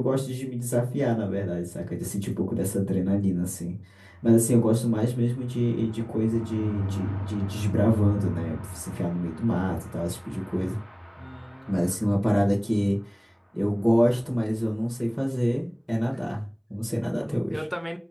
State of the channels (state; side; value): identical; both; correlation 1.00